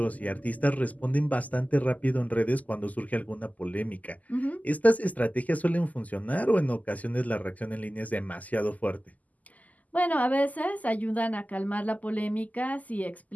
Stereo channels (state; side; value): late; right; 0.077 ms